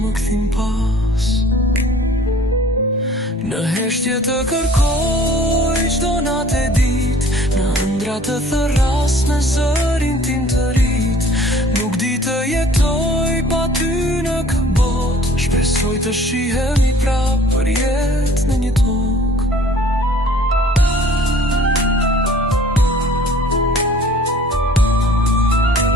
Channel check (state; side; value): normal; both; correlation 0.52